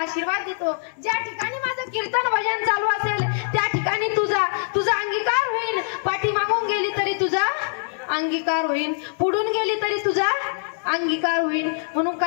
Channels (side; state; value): right; silent; 63 dB below the other